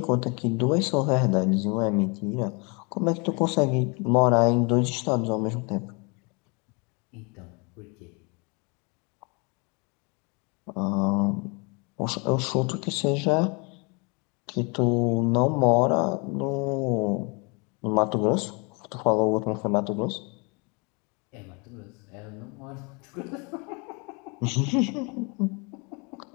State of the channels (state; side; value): quieter; right; 31.1 dB